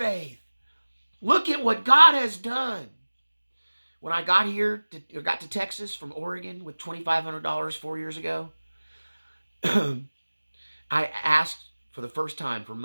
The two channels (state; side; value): inverted; both; correlation -1.00